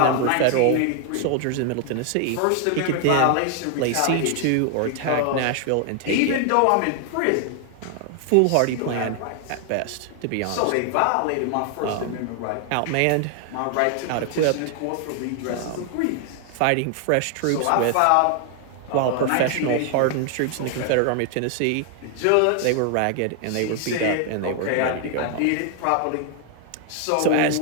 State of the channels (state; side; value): different; both; correlation 0.00